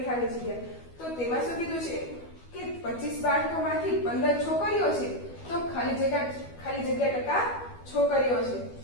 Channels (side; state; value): right; late; 12 ms